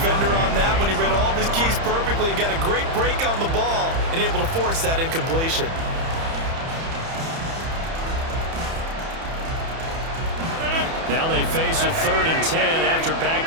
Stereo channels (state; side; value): late; left; 30 ms